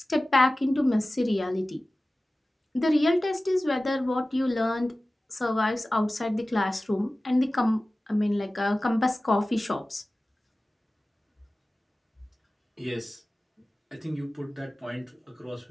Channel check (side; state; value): both; normal; correlation 0.97